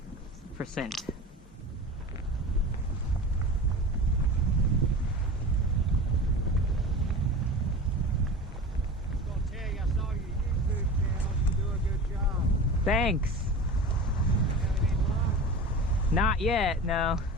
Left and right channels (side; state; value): both; normal; correlation 0.33